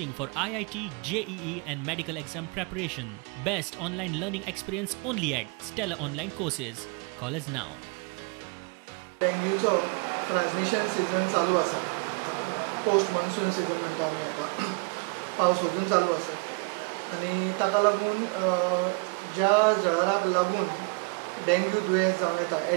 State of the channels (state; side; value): quieter; left; 31.8 dB